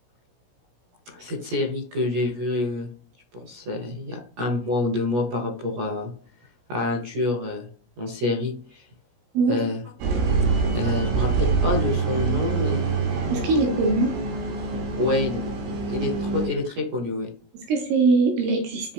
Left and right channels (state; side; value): late; left; 17 ms